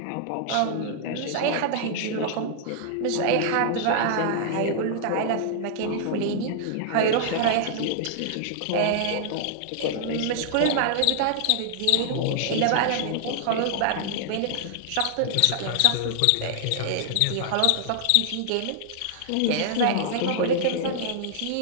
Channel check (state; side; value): different; both; correlation -0.01